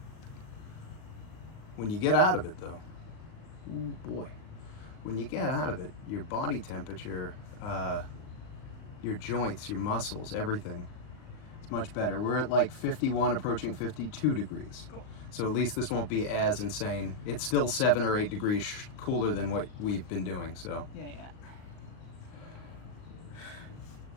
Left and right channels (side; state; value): right; late; 38 ms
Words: When you get out of it, though, ooh boy, when you get out of it, your body temperature, your joints, your muscles, everything, it's much better. We're at like 51, approaching 52 degrees. Cool. So at least this won't be as insane. It's still 7 or 8 degrees cooler than what we've been doing, so. Yeah.